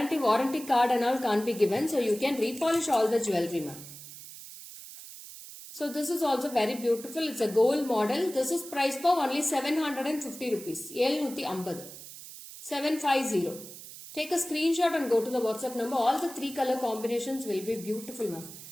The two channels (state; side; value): noise; right; hiss, 14 dB below the sound